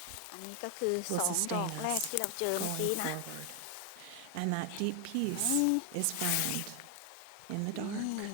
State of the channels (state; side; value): different; both; correlation 0.01